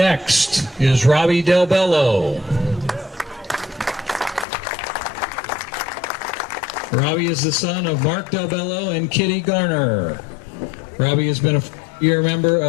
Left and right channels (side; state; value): right; drops out; at 4.5 s